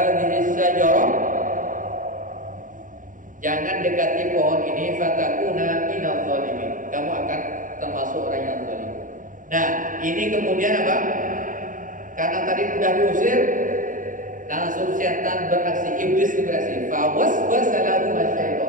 syajarah, jangan dekati pohon ini. Fatakuna minadh dhalimin, kamu akan termasuk orang yang zalim. Nah, ini kemudian apa? Karena tadi sudah diusir, langsung setan beraksi, iblis beraksi. Fawaswasa lahum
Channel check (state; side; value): late; left; 0.38 ms